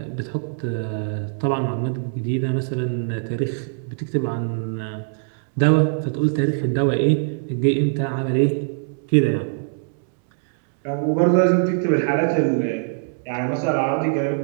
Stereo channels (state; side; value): silent; left; 64 dB below the other